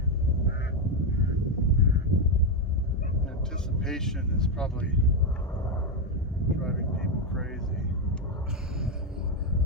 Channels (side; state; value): both; normal; correlation 0.06